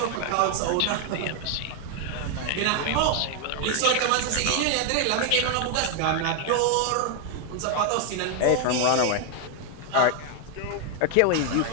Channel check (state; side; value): different; both; correlation 0.01